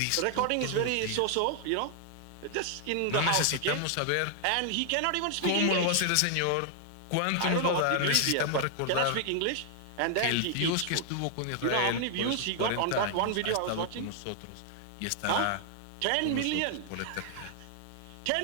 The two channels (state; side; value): different; both; correlation 0.00